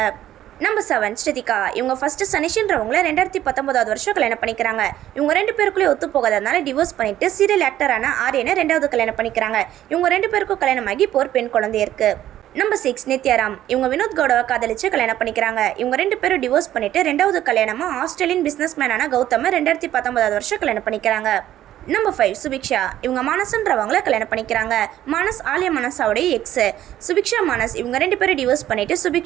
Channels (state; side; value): quieter; left; 12.6 dB